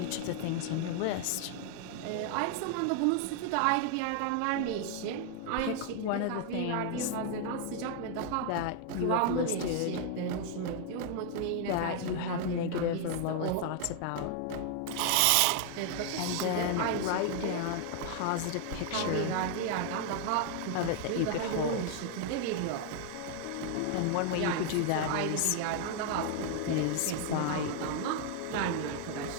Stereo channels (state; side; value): different; both; correlation 0.00